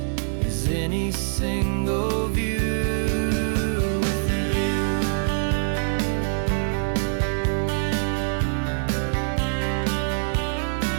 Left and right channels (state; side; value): silent; left; digital silence